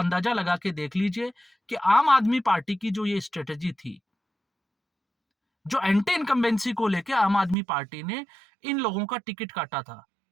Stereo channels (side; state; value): left; drops out; at 7.6 s